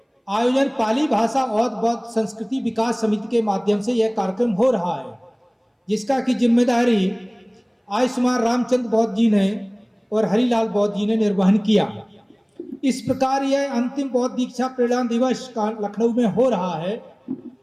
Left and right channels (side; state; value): both; identical; correlation 1.00